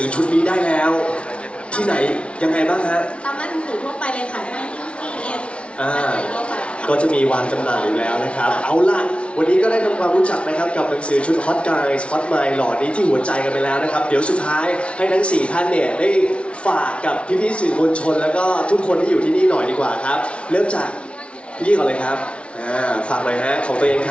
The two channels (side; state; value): right; late; 0.060 ms